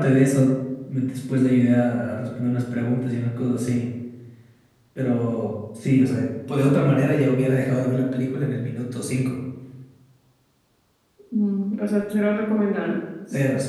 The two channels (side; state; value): both; identical; correlation 1.00